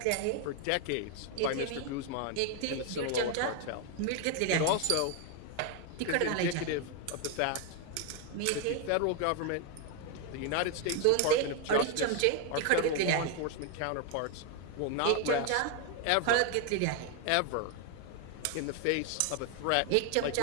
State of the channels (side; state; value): both; different; correlation 0.01